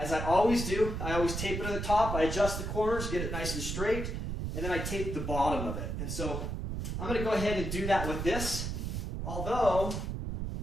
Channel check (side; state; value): right; noise; rumble, 3 dB below the sound